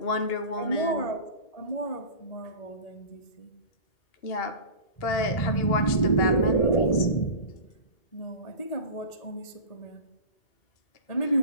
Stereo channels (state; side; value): late; right; 2.8 ms